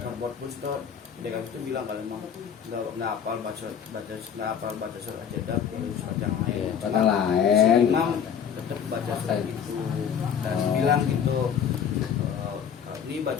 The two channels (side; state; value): right; quieter; 7.8 dB